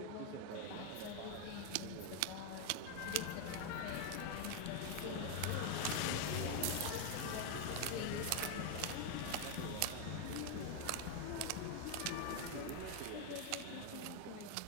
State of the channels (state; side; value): different; both; correlation 0.01